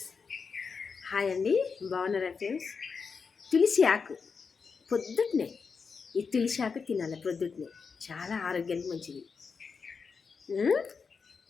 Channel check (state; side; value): quieter; right; 5.4 dB